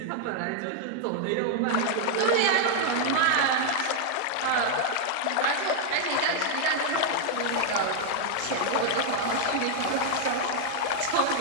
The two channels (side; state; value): both; different; correlation 0.00